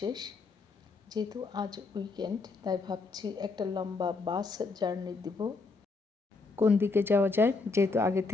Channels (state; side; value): quieter; right; 4.0 dB